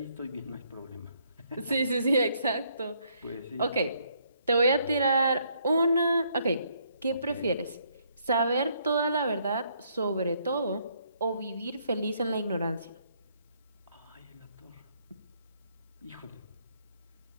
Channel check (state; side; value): inverted; both; correlation -0.70